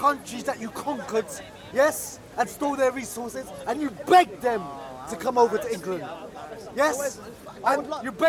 that you conquered, yes, and stole their resources, and you begged them to come over to England. Yes, and you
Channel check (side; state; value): both; identical; correlation 1.00